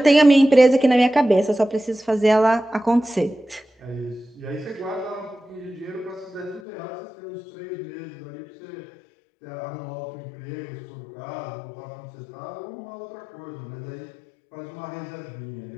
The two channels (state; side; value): drops out; right; at 6.6 s